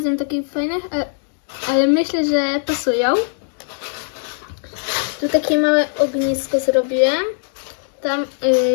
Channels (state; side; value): silent; right; 62 dB below the other